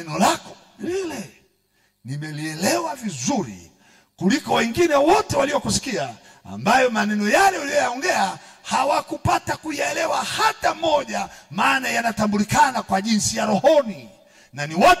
lako lile nimelielewa vizuri kuliko wengine wote waliokusikia, ambayo maneno yale uliyoyaongea hawakupata kuyaelewa hata moja, maana yanatambulikana kwa jinsi ya rohoni, na ni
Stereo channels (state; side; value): identical; both; correlation 1.00